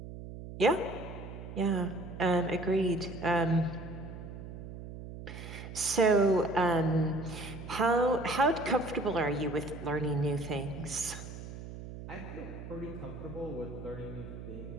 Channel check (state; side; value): noise; right; hum, 11 dB below the sound